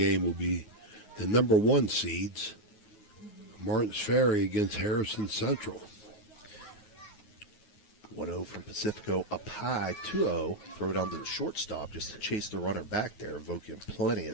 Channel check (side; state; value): right; late; 9.5 ms